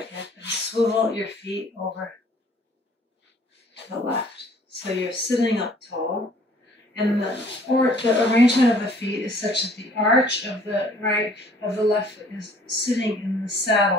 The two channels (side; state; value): both; normal; correlation 0.56